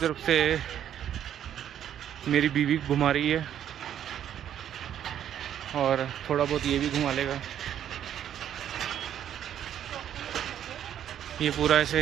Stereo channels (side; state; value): left; quieter; 10.2 dB